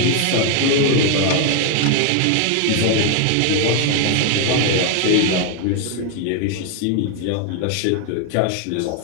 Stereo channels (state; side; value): different; both; correlation 0.01